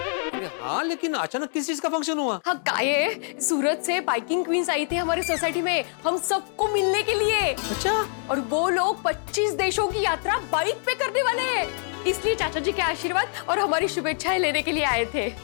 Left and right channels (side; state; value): right; silent; 55 dB below the other